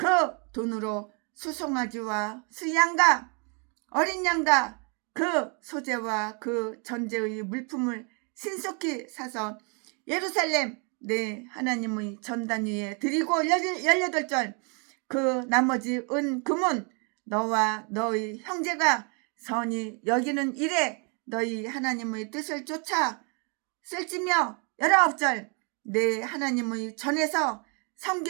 돈으로 수송아지와 수양과 어린 양과 그 소재와 그 전제의 물품을 신속히 사서 예루살렘 내 하나님의 전단 위에 드리고 18절 그 나머지 은 금은 너와 너희 형제가 선히 여기는 일에 너희 하나님의 뜻을 쫓아 쓸지며 19절 내 하나님의 전에서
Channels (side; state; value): left; quieter; 36.4 dB